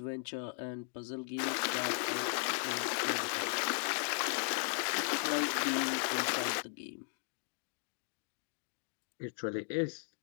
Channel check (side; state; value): right; silent; 53 dB below the other